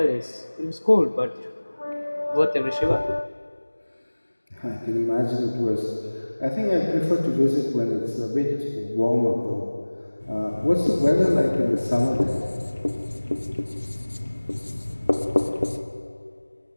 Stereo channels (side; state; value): both; inverted; correlation -1.00